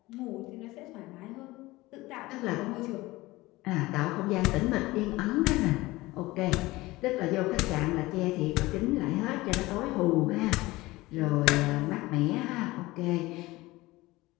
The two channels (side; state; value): right; quieter; 19.8 dB